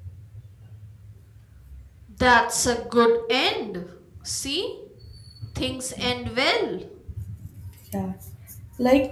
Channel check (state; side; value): identical; both; correlation 1.00